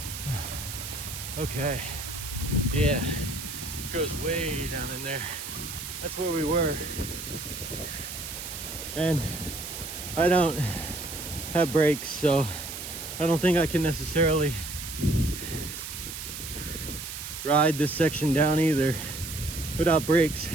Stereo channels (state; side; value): noise; right; hiss, 8 dB below the sound